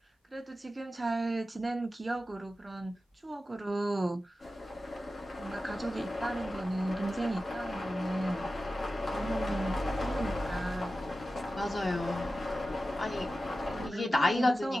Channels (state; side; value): normal; both; correlation 0.93